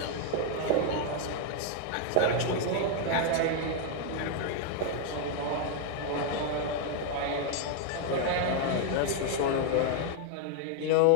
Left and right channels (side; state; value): both; different; correlation 0.00